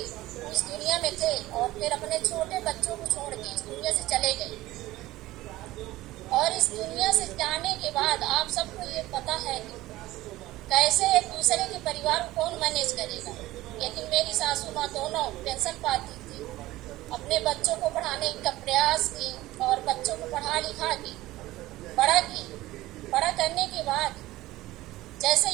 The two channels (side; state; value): left; quieter; 17.2 dB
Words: उस दुनिया में थे और फिर अपने छोटे बच्चों को छोड़ के इस दुनिया से चले गए। और इस दुनिया से जाने के बाद आप सबको ये पता है कि कैसे एक दूसरे के परिवार को कौन मैनेज करेगा। लेकिन मेरी सासू माँ दोनों पेंशन पाती थी, अपने बच्चों को पढ़ाने का प्रयास की और बच्चों को पढ़ा लिखा की, बड़ा की। बड़ा करने के बाद जैसे